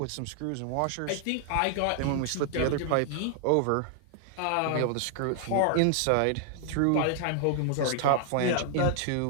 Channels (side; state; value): both; different; correlation 0.00